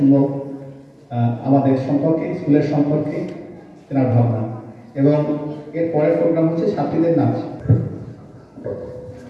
আমাদের সম্পর্কে, স্কুলের সম্পর্কে তেনার ভাবনা, এবং এর পরের প্রোগ্রাম হচ্ছে ছাত্রীদের নাচ।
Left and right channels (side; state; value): both; identical; correlation 1.00